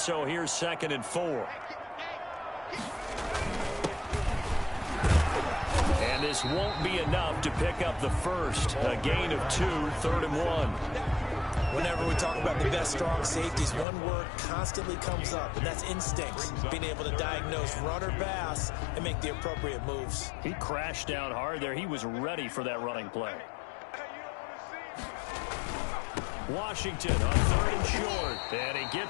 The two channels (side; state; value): right; drops out; at 13.9 s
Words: here's 2nd and 4. And this won't be enough to pick up the first. A gain of 2, 3rd and 1. Whenever we talk about the best strong safeties, one word constantly comes up, and that's instincts. Being able to diagnose run or pass and make the appropriate moves. He crashed down hard there. He was ready for that running play. Washington on 3rd and short. And he